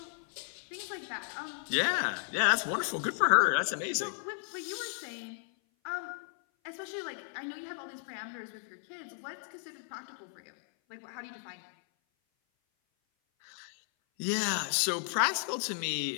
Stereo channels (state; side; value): silent; right; 55 dB below the other